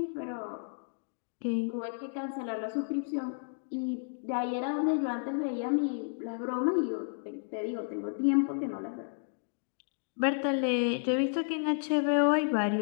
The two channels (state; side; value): silent; right; digital silence